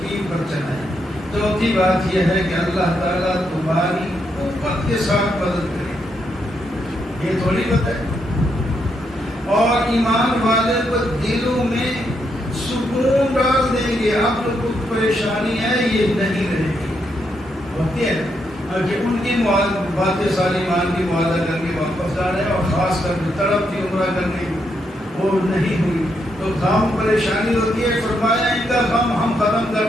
پر چلائے۔ چوتھی بات یہ ہے کہ اللہ تعالیٰ تمہاری قوت کے ساتھ مدد کرے، یہ تھوڑی بات ہے۔ اور ایمان والے کو دلوں میں سکون ڈال دیں گے، اب تو کچھ پریشانی ہے یہ نہیں رہے گی، ہوتی ہے کہ ان کی باتیں ساری ایمان کی معاہدہ کر کے واپس آ رہے ہیں، اور خاص کر کے تڑپ تھی عمرہ کرنے کی وہ نہیں ہوئی تو غم پریشانی ہوتی ہے۔ فرمایا ان کا غم ہم ختم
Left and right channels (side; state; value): both; normal; correlation 0.79